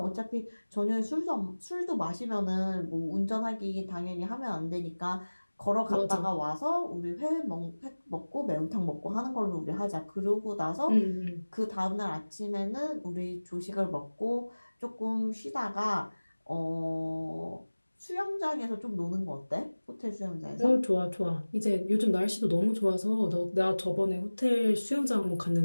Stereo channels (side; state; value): both; inverted; correlation -1.00